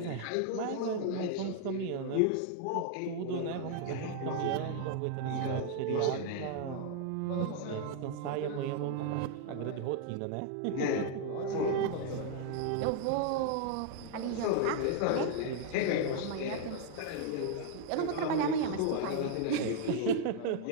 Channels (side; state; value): both; different; correlation 0.00